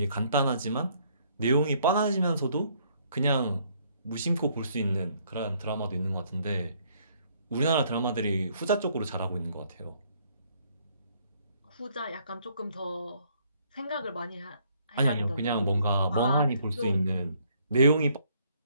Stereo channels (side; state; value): both; inverted; correlation -0.66